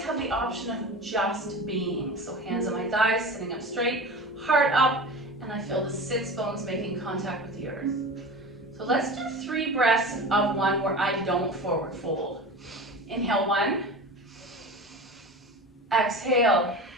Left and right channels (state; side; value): normal; both; correlation 0.32